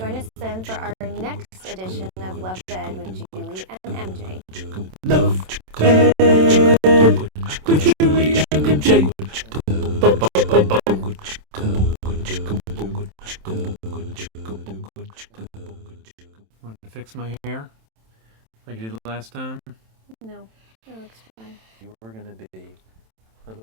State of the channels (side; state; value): left; late; 27 ms